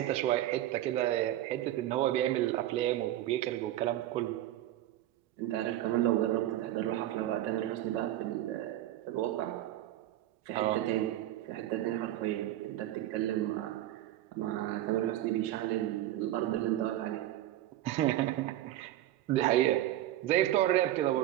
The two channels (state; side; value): quieter; left; 13.7 dB